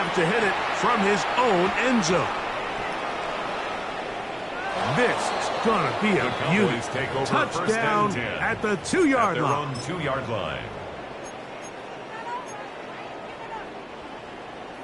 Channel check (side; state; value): both; identical; correlation 1.00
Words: to hit it from his own end zone. This is going to be a The beauty. Cowboys take over Touchdown first and 10 at the at 2-yard their line. own 2-yard line.